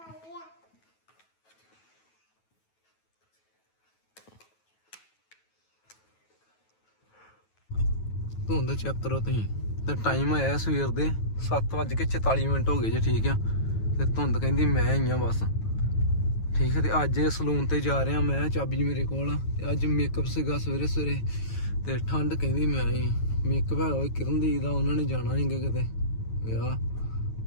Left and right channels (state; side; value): late; right; 9.2 ms